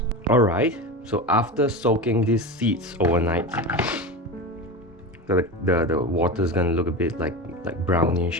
Alright, so after soaking these seeds overnight, the water is gonna look a bit like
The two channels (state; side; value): normal; both; correlation 0.24